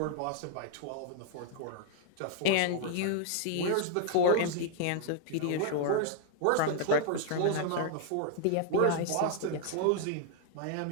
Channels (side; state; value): both; different; correlation -0.01